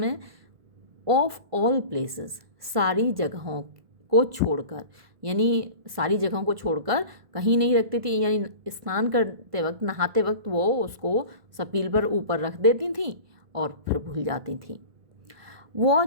ऑफ ऑल प्लेसेस, सारी जगहों को छोड़कर, यानी सारी जगहों को छोड़कर कहीं नहीं रखती थी, यानी स्नान करते वक्त, नहाते वक्त वो उसको सपील पर ऊपर रख देती थी और फिर भूल जाती थी।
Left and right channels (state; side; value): late; left; 1.5 ms